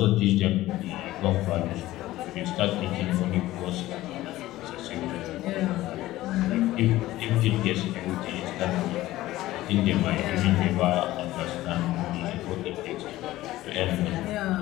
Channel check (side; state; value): right; quieter; 16.2 dB